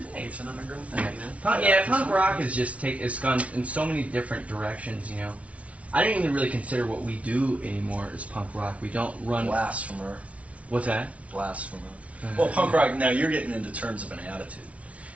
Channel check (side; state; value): left; late; 0.065 ms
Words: It's an underground thing, you know. punk rock is just it's gone in so many different directions. You know, I don't even really consider what we do anymore as punk rock. We don't run. Blasphemer. What's that? Blasphemer. Well, punk rock, now you're getting into terms of an attitude.